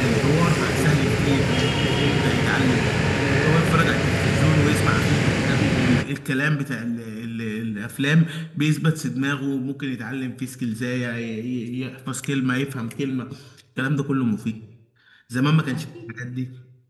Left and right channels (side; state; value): both; identical; correlation 1.00